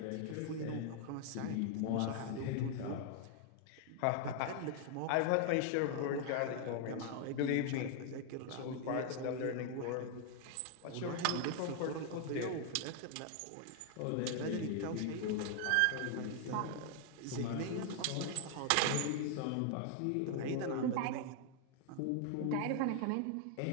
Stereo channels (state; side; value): different; both; correlation 0.00